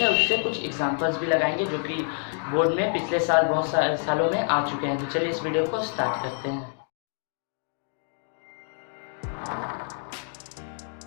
है उससे कुछ एग्जांपल्स भी लगाएंगे जो कि बोर्ड में पिछले साल बहुत सारे सालों में आ चुके हैं। तो चलिए इस वीडियो को स्टार्ट करते हैं।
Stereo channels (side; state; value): right; silent; 56 dB below the other